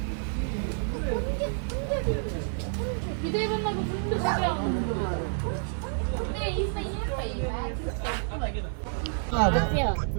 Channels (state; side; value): silent; left; digital silence